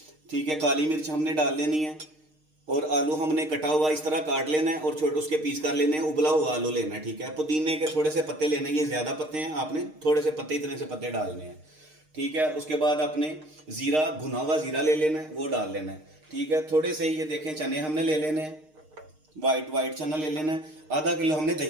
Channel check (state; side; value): late; left; 6.5 ms